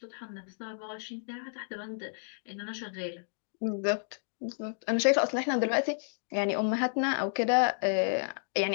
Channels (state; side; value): silent; right; digital silence